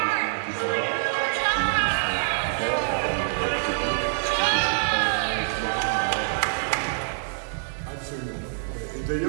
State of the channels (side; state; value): left; silent; digital silence